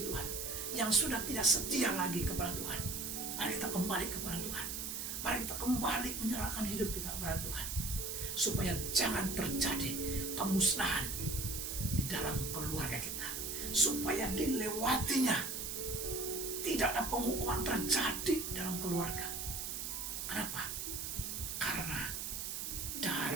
Tuhan, yang sudah tidak setia lagi kepada Tuhan, mari kita kembali kepada Tuhan. Mari kita kembali menyerahkan hidup kita kepada Tuhan, supaya jangan terjadi kemusnahan di dalam keluarga kita, supaya dilewatinya tidak ada penghukuman terjadi dalam keluarga. Kenapa? Karena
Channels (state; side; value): noise; right; hiss, 4 dB below the sound